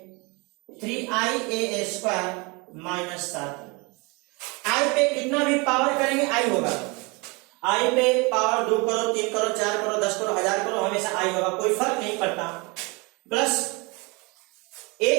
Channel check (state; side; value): quieter; left; 28.3 dB